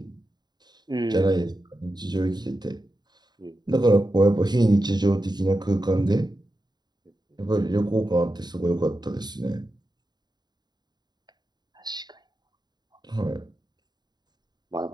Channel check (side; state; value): left; late; 0.20 ms